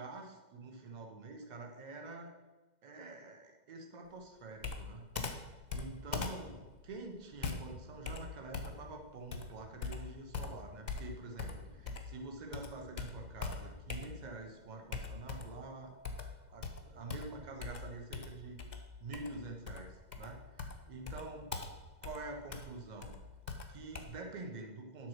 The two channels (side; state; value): left; late; 2.0 ms